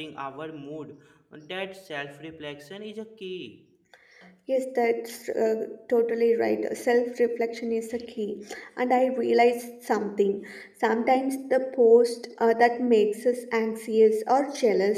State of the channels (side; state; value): both; identical; correlation 1.00